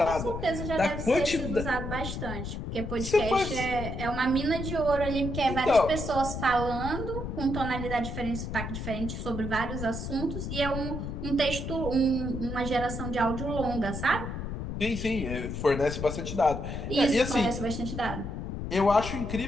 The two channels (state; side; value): noise; left; rumble, 5 dB below the sound